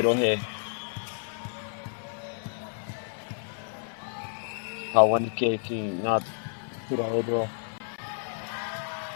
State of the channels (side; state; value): right; silent; 58 dB below the other